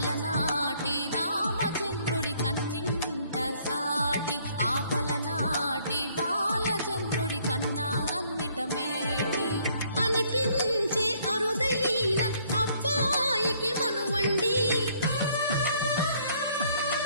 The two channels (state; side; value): inverted; both; correlation -0.64